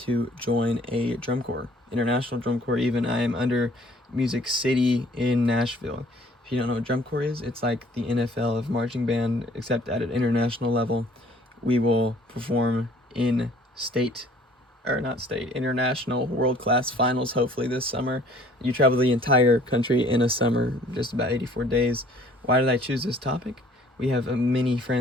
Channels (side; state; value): both; normal; correlation 0.55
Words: join a drum corps, international drum corps even. I am under Music City in Nashville. If you don't know what drum corps is, it's like the NFL of marching band, except at an international level. We will perform in international world-class finals hopefully this summer. You travel the entire country in a summer, just about 84 days. Why did I choose this topic? We have many